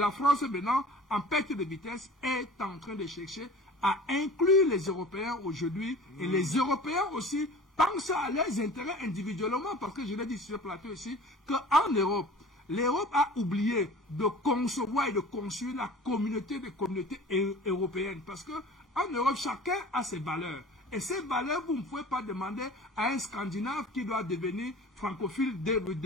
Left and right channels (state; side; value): normal; both; correlation 0.42